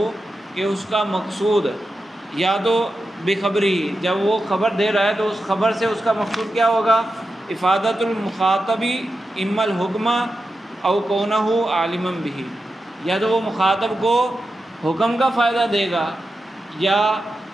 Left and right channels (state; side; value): normal; both; correlation 0.90